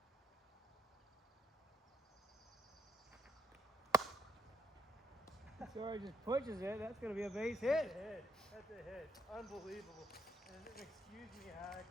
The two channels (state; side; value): normal; both; correlation 0.74